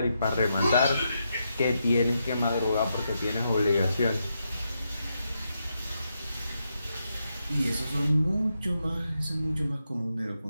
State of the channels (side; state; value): both; inverted; correlation -0.83